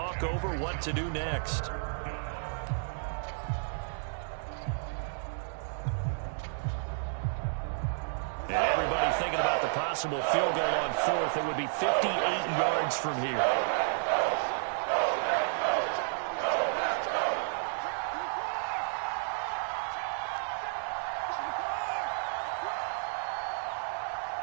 over what to do next. And everybody thinking about the possible field goal on fourth. It would be 58 yards from here.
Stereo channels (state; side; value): silent; left; digital silence